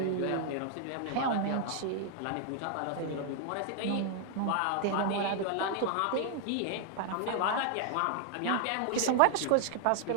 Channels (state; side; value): different; both; correlation 0.00